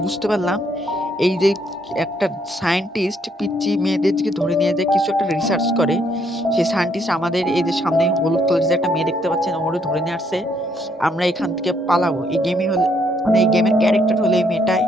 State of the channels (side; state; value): both; normal; correlation 0.71